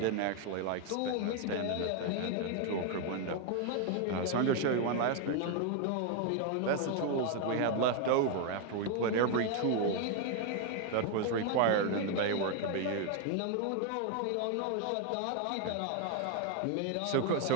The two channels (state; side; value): different; both; correlation 0.01